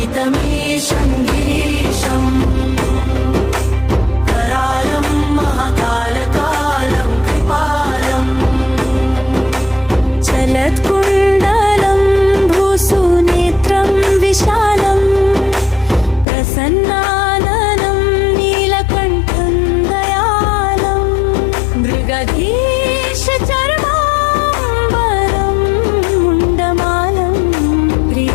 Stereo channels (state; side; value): drops out; right; at 16.2 s